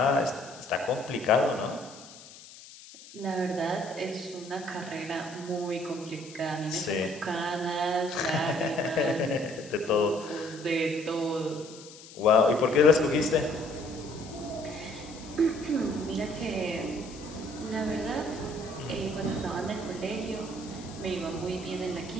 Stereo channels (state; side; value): noise; left; hiss, 18 dB below the sound